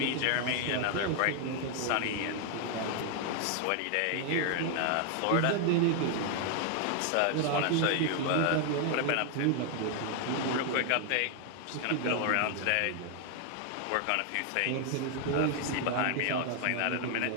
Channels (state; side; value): different; both; correlation 0.00